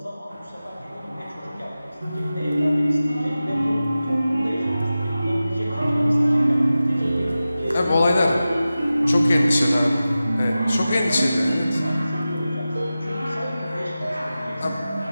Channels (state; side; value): inverted; both; correlation -0.95